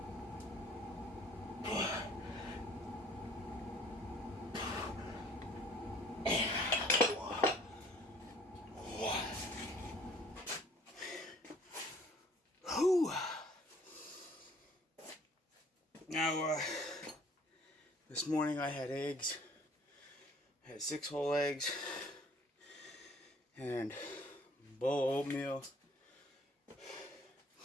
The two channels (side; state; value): both; normal; correlation 0.55